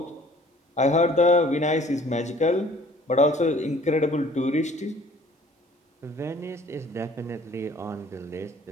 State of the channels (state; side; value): normal; both; correlation 0.53